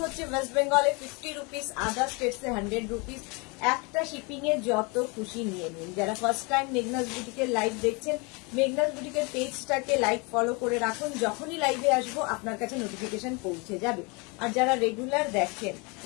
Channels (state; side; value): quieter; right; 29.5 dB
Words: হচ্ছে ওয়েস্ট বেঙ্গলে 50 রুপিস, আদার স্টেটসে 100 রুপিস। একটা শিপিং এ যত খুশি নিয়ে নিন। যারা ফার্স্ট টাইম মেঘনাস বুটিকের লাইভ দেখছেন, মেঘনাস বুটিকের পেজটাকে লাইক ফলো করে রাখুন, যখনই লাইভে আসবো আপনার কাছে নোটিফিকেশন পৌঁছে যাবে। আর যারা রেগুলার দেখেন,